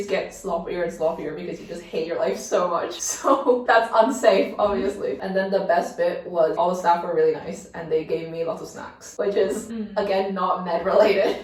get sloppier and sloppier because you just hate your life so much. So that's unsafe, obviously. And then the best bit was all the staff were really nice and they gave me lots of snacks, which is, again, not med related.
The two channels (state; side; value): identical; both; correlation 1.00